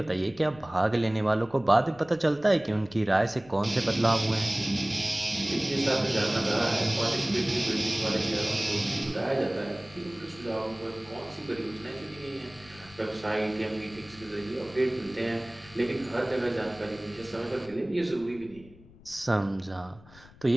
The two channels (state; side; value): noise; left; rumble, 23 dB below the sound